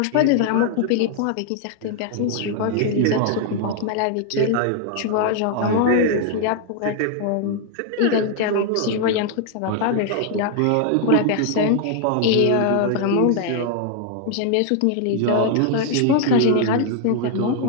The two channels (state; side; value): different; both; correlation 0.00